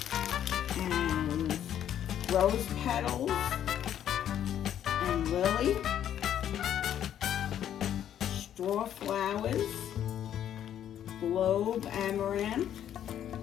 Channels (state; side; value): quieter; right; 10.3 dB